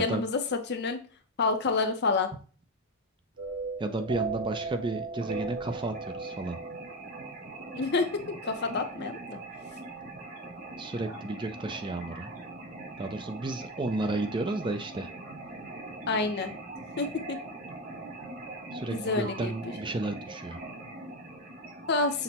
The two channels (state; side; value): normal; both; correlation 0.15